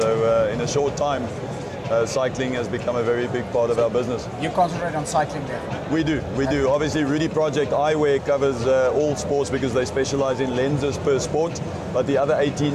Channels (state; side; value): identical; both; correlation 1.00